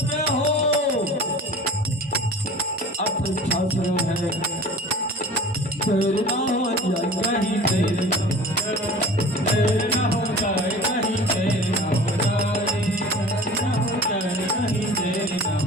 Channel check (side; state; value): both; normal; correlation 0.40